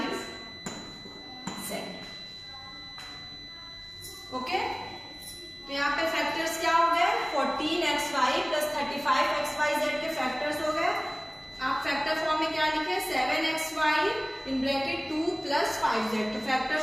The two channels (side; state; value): both; identical; correlation 1.00